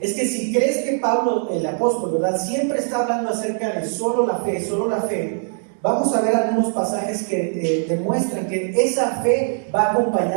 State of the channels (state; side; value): silent; left; digital silence